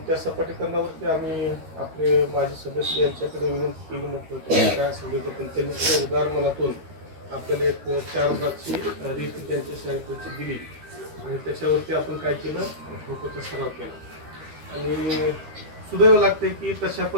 त्या सपाटीकरणावरती आम्ही आपले माजी सदस्य यांच्याकडे विनंती केली म्हटलं होतं काय असेल पण त्यांनी त्या उदार मनातून आपल्याला एक 4 ब्लॉकची रीत त्यांच्या शाळेची दिली आणि त्याच्यावरती आपण काय केलं फोटोचा सराव केला. आणि सुदैव लागते की तशा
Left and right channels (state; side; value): late; left; 13 ms